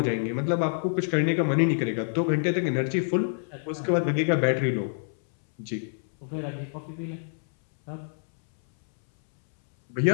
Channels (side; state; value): right; silent; 60 dB below the other